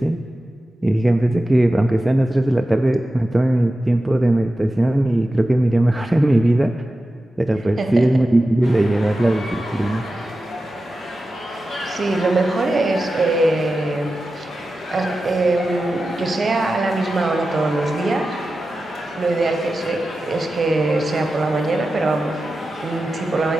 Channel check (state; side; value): normal; both; correlation 0.93